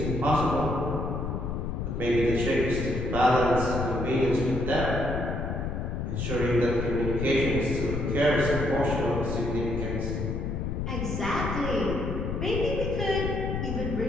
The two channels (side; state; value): left; noise; rumble, 2 dB below the sound